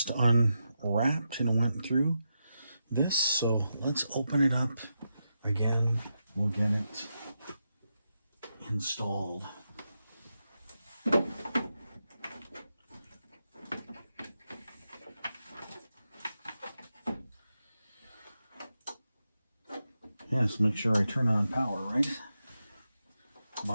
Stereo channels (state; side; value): inverted; both; correlation -0.87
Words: unwrapped and went through this, so let's open it up again. We'll get it installed. Yes, make sure I turn on power, right?